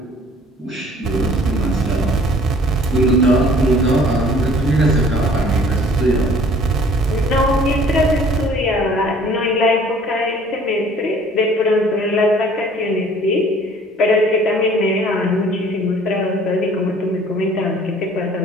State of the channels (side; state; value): both; normal; correlation 0.53